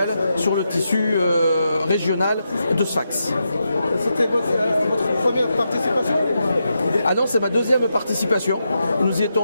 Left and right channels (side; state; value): both; inverted; correlation -0.85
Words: sur le tissu régional de Sfax. C'était votre première participation? Ah non, c'est ma deuxième participation. Nous y étions